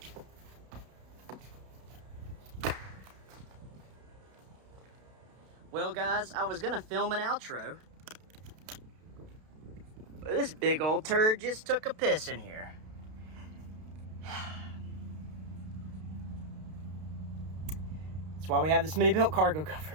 Well, guys, I was gonna film an outro, but this big old turd just took a piss in here. That's why we have the SmittyBilt cargo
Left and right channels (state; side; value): late; left; 32 ms